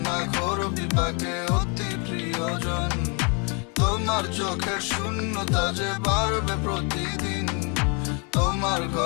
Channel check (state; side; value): quieter; right; 34.0 dB